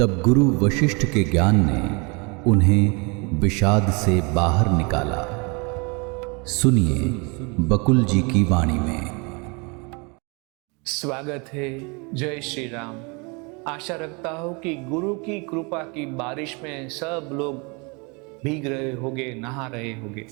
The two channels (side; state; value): left; quieter; 30.7 dB